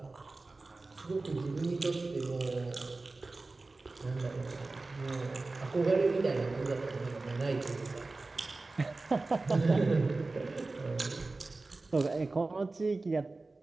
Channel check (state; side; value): quieter; left; 3.4 dB